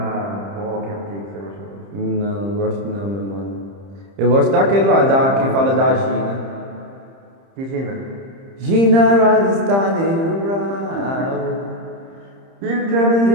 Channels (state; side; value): late; left; 30 ms